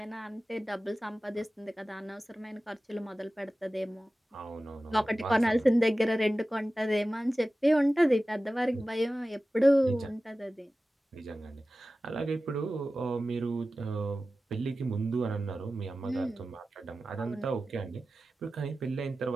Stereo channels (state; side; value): normal; both; correlation 0.95